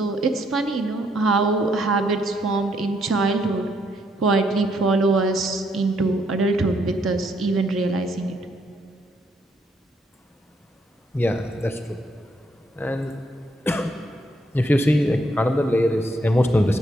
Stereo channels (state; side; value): normal; both; correlation 0.73